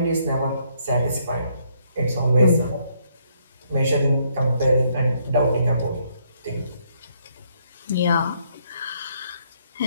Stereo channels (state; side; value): inverted; both; correlation -0.71